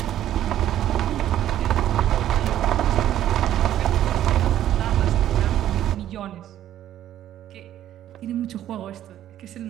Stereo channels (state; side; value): quieter; left; 11.9 dB